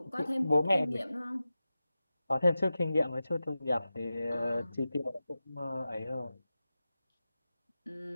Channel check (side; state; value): both; inverted; correlation -0.94